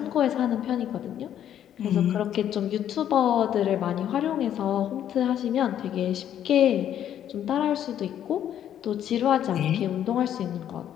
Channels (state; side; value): quieter; right; 10.4 dB